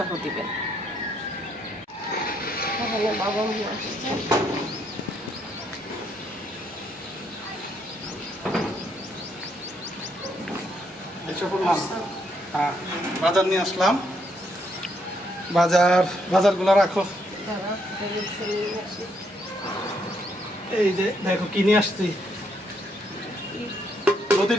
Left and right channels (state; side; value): normal; both; correlation 0.74